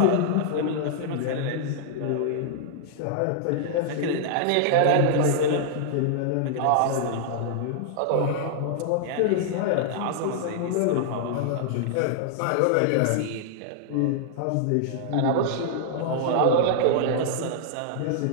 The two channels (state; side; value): different; both; correlation -0.01